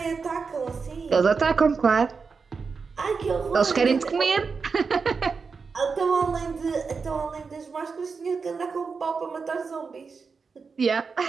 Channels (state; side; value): quieter; left; 5.1 dB